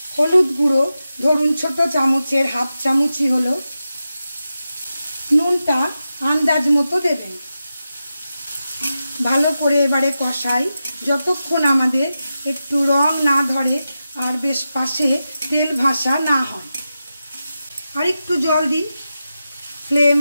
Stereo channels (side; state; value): both; inverted; correlation -0.91